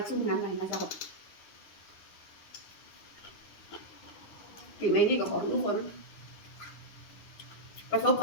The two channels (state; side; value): late; right; 9.8 ms